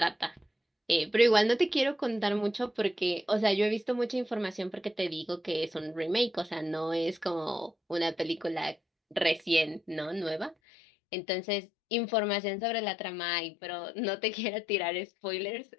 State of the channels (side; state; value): right; drops out; at 10.6 s